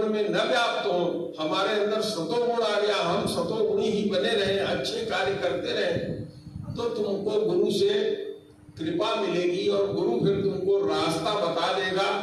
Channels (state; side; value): identical; both; correlation 1.00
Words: में न व्याप्त हो, हमारे अंदर सतोगुण आ गया, हम सतोगुणी ही बने रहे, अच्छे कार्य करते रहे, तो तुमको गुरु से कृपा मिलेगी और गुरु फिर तुमको रास्ता बता देगा